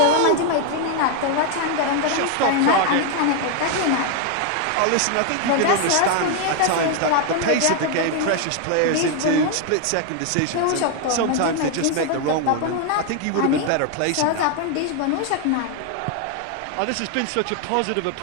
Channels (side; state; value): both; different; correlation 0.01